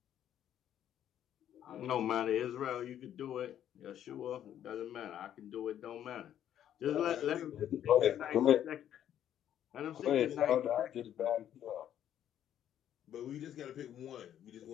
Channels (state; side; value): quieter; right; 10.6 dB